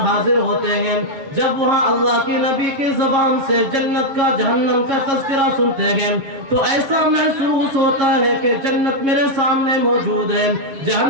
حاضر ہوتے ہیں، جب وہاں اللہ کی نبی کی زبان سے جنت کا جہنم کا تذکرہ سنتے ہیں تو ایسا محسوس ہوتا ہے کہ جنت میرے سامنے موجود ہے،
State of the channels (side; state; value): left; late; 7.4 ms